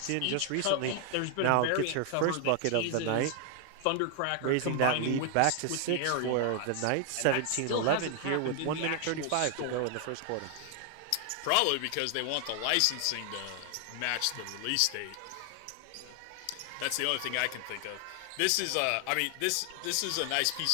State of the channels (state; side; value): different; both; correlation 0.00